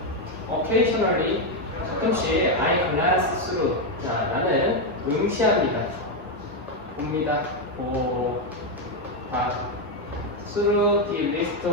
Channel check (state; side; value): normal; both; correlation 0.05